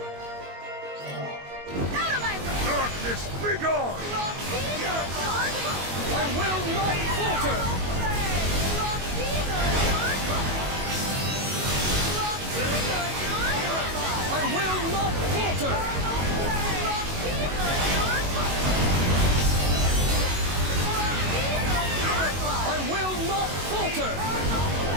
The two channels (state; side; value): late; left; 22 ms